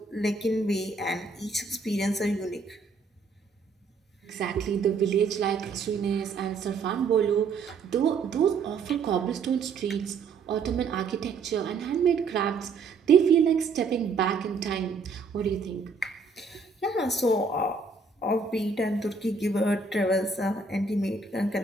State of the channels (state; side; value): quieter; left; 4.5 dB